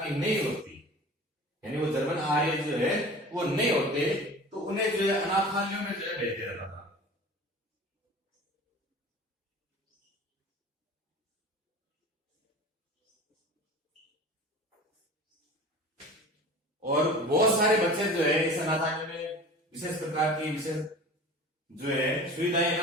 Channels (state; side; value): normal; both; correlation 0.39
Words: की नहीं होती, यानी वो जर्मन आर्य जो है वो नहीं होते, तो उन्हें जो है अनाथालयों में जो है भेज दिया जाता था। और बहुत सारे बच्चे जो है इस अनाथालय में विशेष प्रकार की विशेष जो है सुविधाएं न